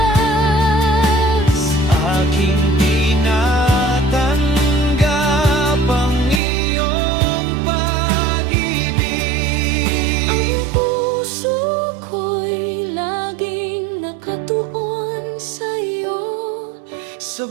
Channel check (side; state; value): left; drops out; at 6.4 s